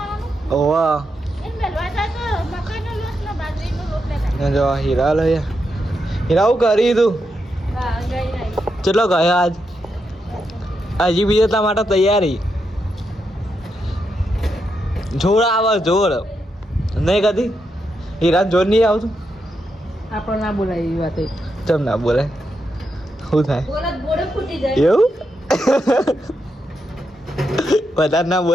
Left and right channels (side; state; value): both; normal; correlation 0.83